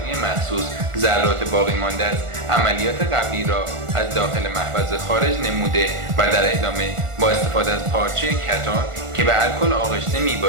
مخصوص ذرات باقی مانده از عملیات قبلی را از داخل محفظه خارج نموده و در ادامه با استفاده از پارچه کتان که به الکل آغشته می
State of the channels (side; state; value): left; late; 1.4 ms